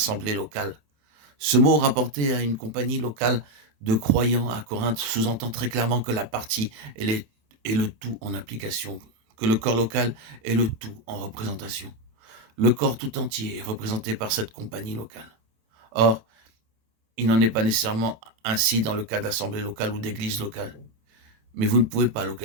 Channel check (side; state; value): left; late; 27 ms